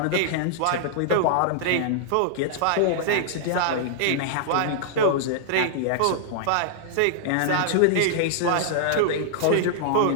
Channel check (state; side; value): different; both; correlation -0.01